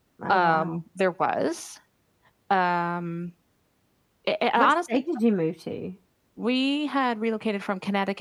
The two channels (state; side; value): identical; both; correlation 1.00